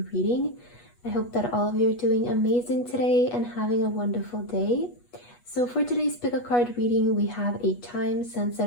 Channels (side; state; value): right; late; 8.2 ms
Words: reading. I hope that all of you are doing amazing today and having a wonderful day. So for today's pick a card reading, we have a